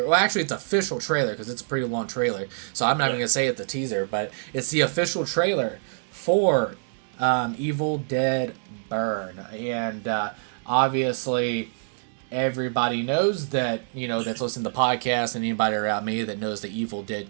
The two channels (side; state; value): left; silent; digital silence